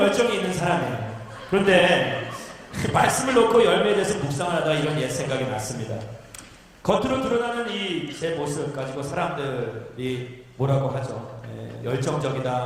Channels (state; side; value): identical; both; correlation 1.00